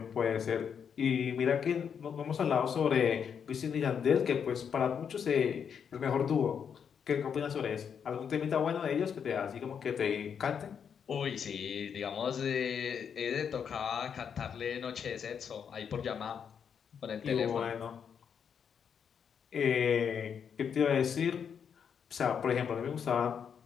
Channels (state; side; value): quieter; right; 7.3 dB